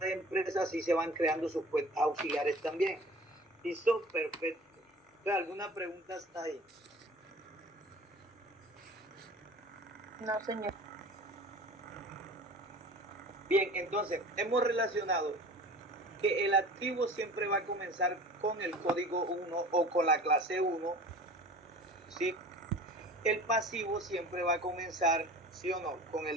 empresa, así se van creando sus cuentas auxiliares también. ¿Listo? Perfecto. ¿Alguna pregunta hasta ahí? No, señor. Bien, entonces hemos relacionado que el activo siempre va a comenzar con el código 1 o con la clase 1, ¿sí? El pasivo siempre va a comenzar, ¿sí o no?, con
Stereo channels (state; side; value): normal; both; correlation 0.42